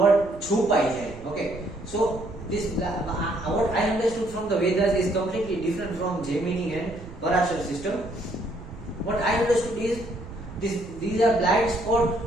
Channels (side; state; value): right; noise; rumble, 15 dB below the sound